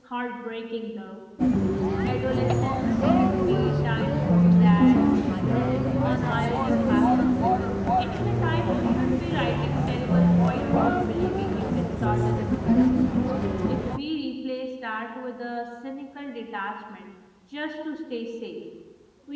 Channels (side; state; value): both; identical; correlation 1.00